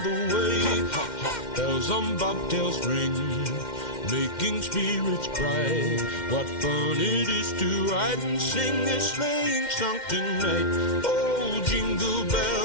way. Bells on bobtails ring, making spirits bright. What fun it is to ride and sing a sleighing song tonight. Oh, jingle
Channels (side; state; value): right; late; 2.1 ms